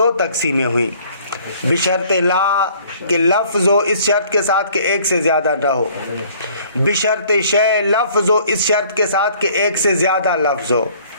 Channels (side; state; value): both; inverted; correlation -0.56